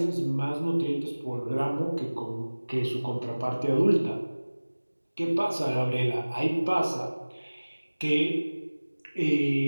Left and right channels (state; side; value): inverted; both; correlation -1.00